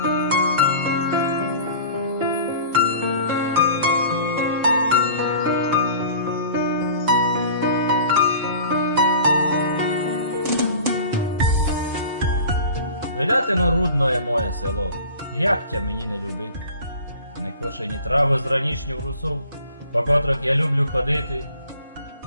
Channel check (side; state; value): both; inverted; correlation -0.43